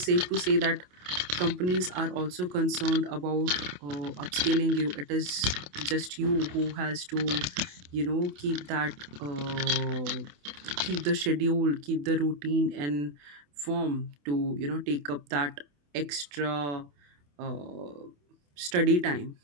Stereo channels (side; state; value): left; late; 28 ms